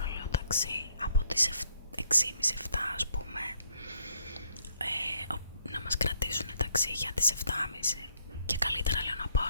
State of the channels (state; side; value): inverted; both; correlation -0.69